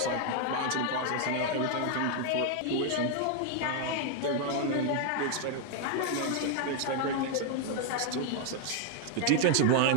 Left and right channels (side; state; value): both; different; correlation 0.00